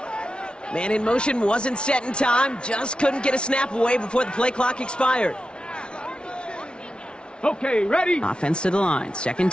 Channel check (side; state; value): right; late; 0.056 ms